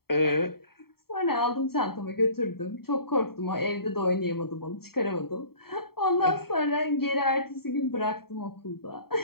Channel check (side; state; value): right; late; 0.95 ms